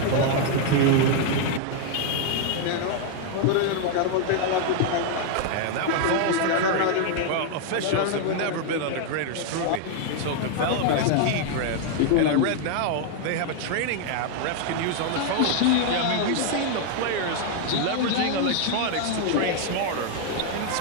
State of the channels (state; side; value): different; both; correlation 0.00